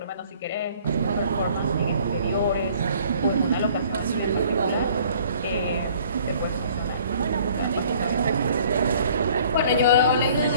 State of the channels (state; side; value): inverted; both; correlation -0.56